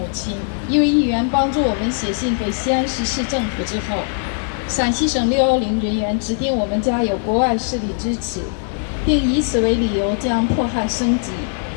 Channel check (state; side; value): silent; right; digital silence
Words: 亲，一位议员帮助我们写信给西安市市政府之后，陕西省610人员指定我们家有国外势力支持，并以此为理由将迫害升级。